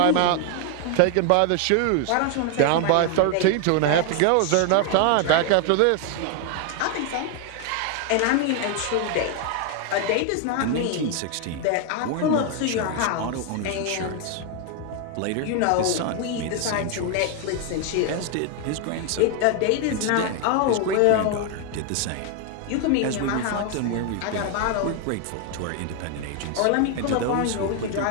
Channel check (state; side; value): different; both; correlation 0.01